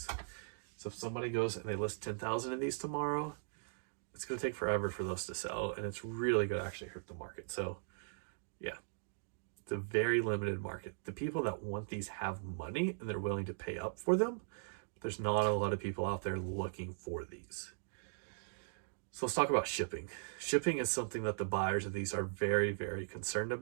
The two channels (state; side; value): silent; left; digital silence